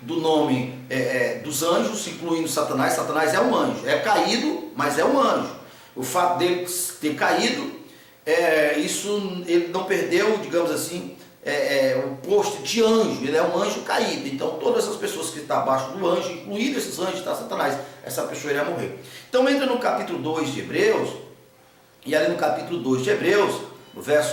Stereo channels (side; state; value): both; identical; correlation 1.00